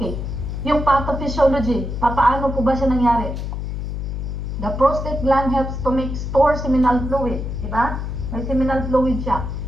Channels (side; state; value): left; noise; hum, 4 dB below the sound